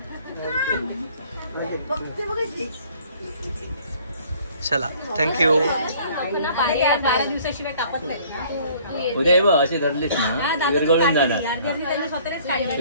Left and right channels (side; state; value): both; inverted; correlation -0.56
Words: चला थँक्यू. 12 दिवसाशिवाय कापत नाही. उद्या बघ अशी धरलीस ना विरघळून जाणार.